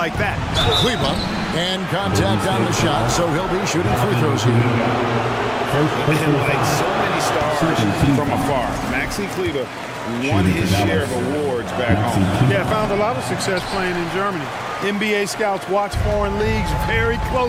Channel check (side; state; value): both; identical; correlation 1.00